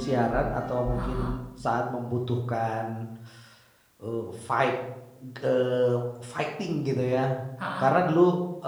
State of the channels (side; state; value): both; identical; correlation 1.00